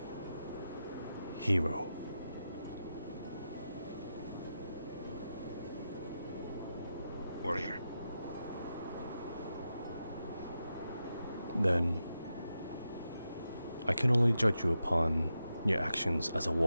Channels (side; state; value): both; inverted; correlation -0.88